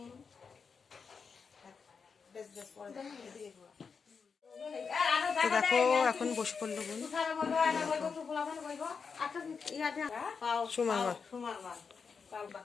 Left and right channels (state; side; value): quieter; right; 5.6 dB